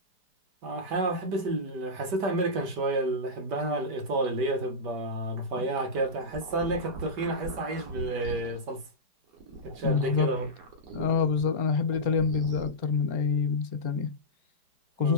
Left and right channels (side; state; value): left; late; 5.1 ms